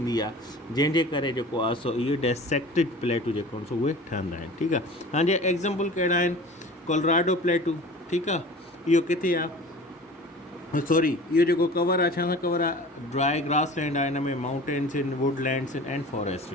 आहे, जंहिंजे करे जेको आहे सो इहो डिसेक्टेड प्लेटूं जेको आहिनि सो उहे ठहंदा आहिनि, ठीकु आहे। हाणे एग्ज़ाम्पल कहिड़ा आहिनि? कोलोराडो प्लेटूं, ठीकु आहे। इहो किथे आहे? सॉरी, इहो जेको कवर आहे, छा सां कवर आहे? ड्राई ग्रास लैंड आहे, हिन में माउंटेन्स आहिनि, वुडलैंड्स आहिनि एंड फॉरेस्ट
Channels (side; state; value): both; normal; correlation 0.40